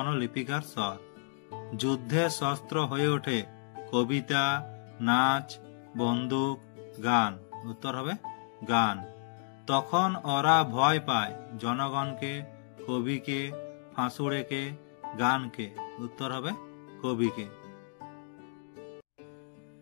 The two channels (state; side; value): silent; right; digital silence